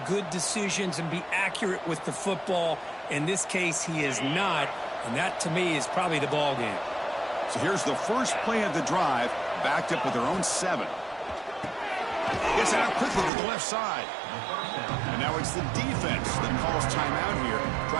good decisions and be accurate with the football. In this case, he is not. And that, to me, is probably the ball game. So here's the first play of the drive. Backed up with their own 7. Gets it out quickly to the left side. And now it's the defense that calls timeout here,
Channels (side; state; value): left; drops out; at 13.3 s